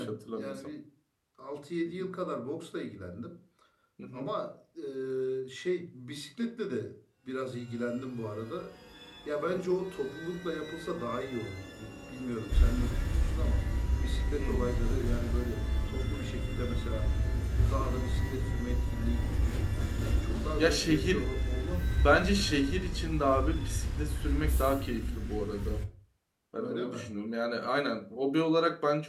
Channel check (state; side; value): identical; both; correlation 1.00